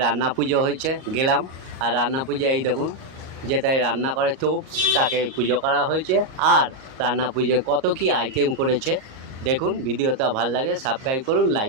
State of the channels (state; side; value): late; left; 38 ms